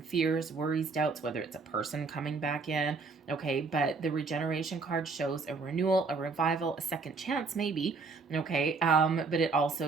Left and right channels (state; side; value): quieter; left; 4.3 dB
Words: fears, worries, doubts, whether it's a person coming back in, okay, but the regeneration card shows a renewal, a revival, a second chance maybe, okay, but it